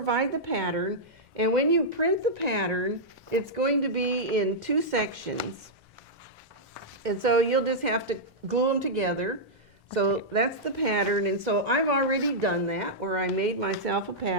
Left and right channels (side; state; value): both; normal; correlation -0.09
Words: the pattern, and when you print the pattern, it's going to be in 2 sections. And so you'll just have to glue them together. So that's the pattern, and so I've already done that, where I made myself a